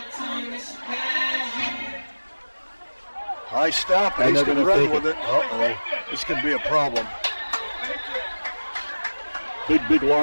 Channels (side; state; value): both; inverted; correlation -1.00